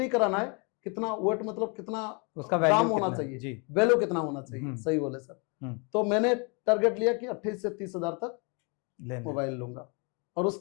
कराना है, कितना वेट मतलब कितना उसका ग्राम होना चाहिए, वैल्यू कितना होना चाहिए, सही बोले सर। तो मैंने टारगेट लिया कि 28 से 30 हजार तक मोबाइल लूंगा। और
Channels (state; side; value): quieter; right; 33.6 dB